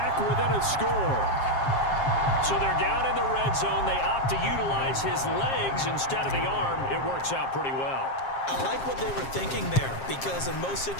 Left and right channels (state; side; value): late; right; 7.5 ms